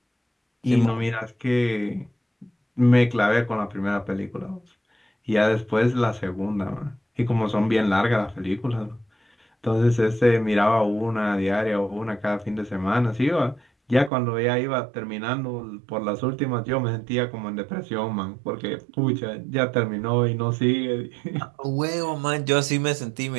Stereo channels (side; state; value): left; drops out; at 14.1 s